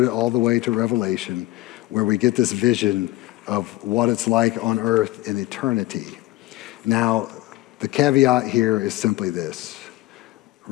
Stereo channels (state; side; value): quieter; right; 17.9 dB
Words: it all the way to Revelation, where we get this vision of what it's like on earth in eternity. Now, the caveat here is simply this.